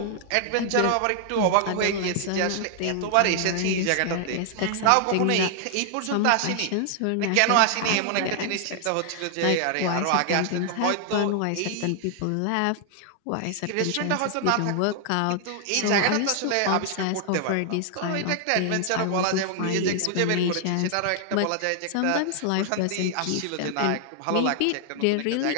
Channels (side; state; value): both; different; correlation 0.00